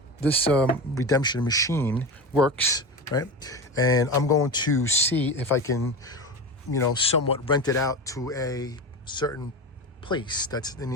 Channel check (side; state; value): both; normal; correlation 0.24